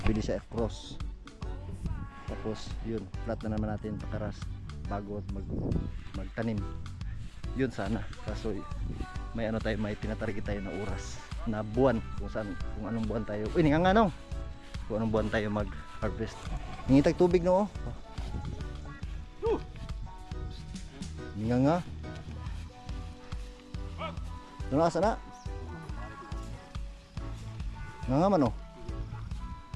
pwede siya cross, tapos yun flat na naman natin pakaras bago magtanim. Yun sana, kaso may ano tayo, may tinatarget tayo na oras na buwan, kung anong buwan tayo, uy nga nong kung anong buwan tayo mag harvest. Ningitag tubig no. Nga ano asa na nga man oh.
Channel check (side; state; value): both; identical; correlation 1.00